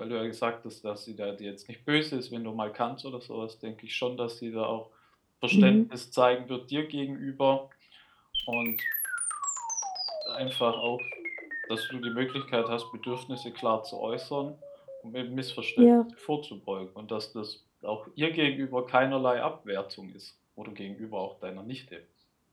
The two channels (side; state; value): both; identical; correlation 1.00